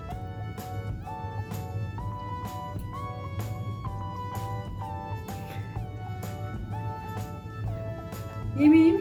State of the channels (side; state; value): both; identical; correlation 1.00